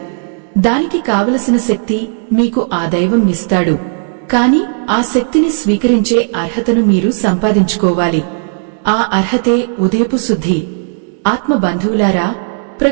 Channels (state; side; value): silent; left; digital silence